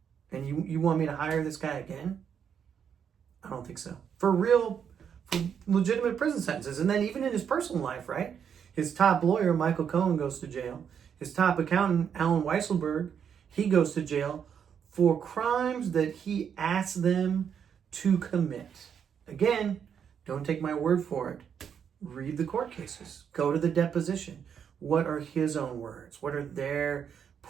And you want me to hire this guy again? I don't think so. For legitimate prison sentences. And then even in his personal life, right? His top lawyer, Michael Cohen, goes to jail. His top accountant, Alan Weisselberg, he goes to jail for crimes that he asked them to commit. Again, don't take my word for it. Read the court cases. Go to the deposition. What are his own words? What are their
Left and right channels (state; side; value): quieter; left; 7.8 dB